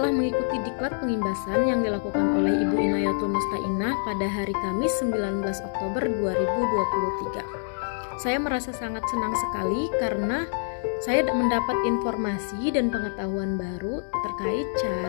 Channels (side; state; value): right; silent; digital silence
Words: mengikuti diklat pengimbasan yang dilakukan oleh Ibu Inayatul Mustainah pada hari Kamis 19 Oktober 2023. Saya merasa sangat senang sekali karena saya mendapat informasi dan pengetahuan baru terkait